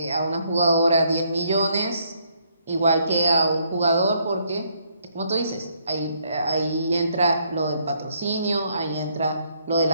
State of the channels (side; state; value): both; inverted; correlation -0.70